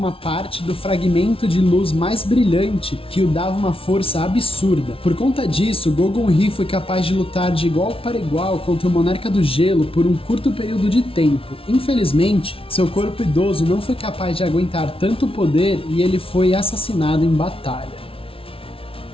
parte do fragmento de luz mais brilhante que o dava uma força absurda. Por conta disso, Gogun-Hi foi capaz de lutar de igual para igual contra o Monarca do Gelo por um curto período de tempo. Infelizmente, seu corpo idoso não foi capaz de aguentar tanto poder e ele foi assassinado em batalha.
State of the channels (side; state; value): right; late; 0.26 ms